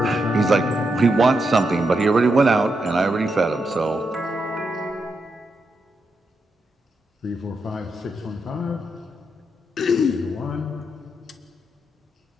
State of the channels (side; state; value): both; normal; correlation 0.83